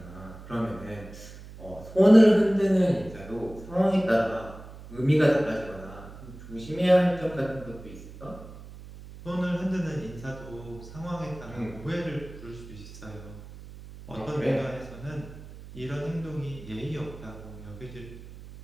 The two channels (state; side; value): noise; right; hum, 16 dB below the sound